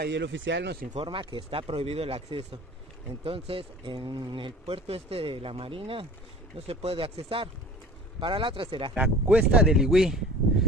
el oficial nos informa que está prohibido el acceso. Entonces, en el puerto este de la Marina no se puede accesar. Para la otra será la Cuesta del Igüí.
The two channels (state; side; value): normal; both; correlation 0.44